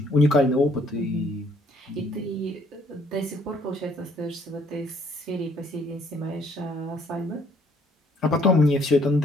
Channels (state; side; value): normal; both; correlation 0.63